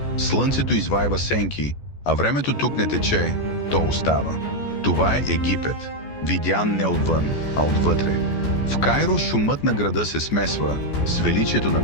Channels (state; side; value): late; right; 14 ms